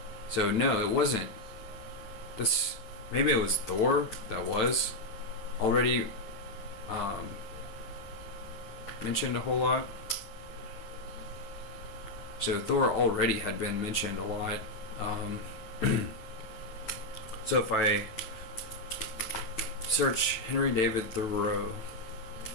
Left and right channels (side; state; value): right; late; 9.3 ms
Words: So no, it wasn't. Maybe it was Thor that was already mentioned a whole lot. So Thor already had been mentioned a lot. So if I search Henry David Thoreau